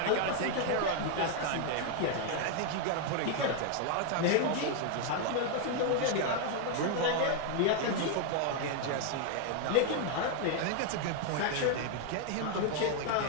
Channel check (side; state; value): both; different; correlation 0.00